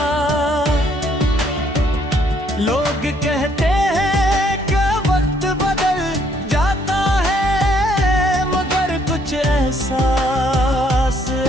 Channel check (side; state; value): both; normal; correlation 0.67